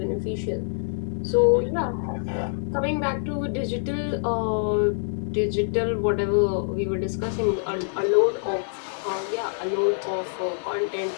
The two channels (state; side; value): silent; right; digital silence